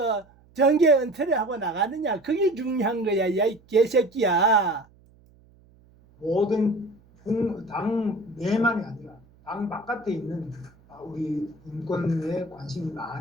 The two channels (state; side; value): noise; right; hum, 29 dB below the sound